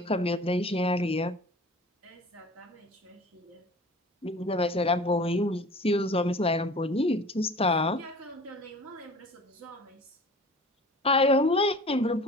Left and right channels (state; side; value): normal; both; correlation 0.42